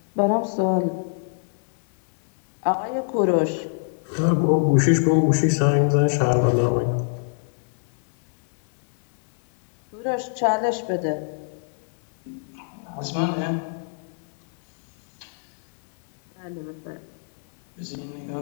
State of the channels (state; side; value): silent; right; digital silence